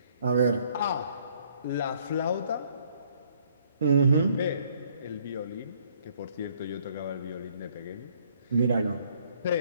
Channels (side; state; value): both; inverted; correlation -0.64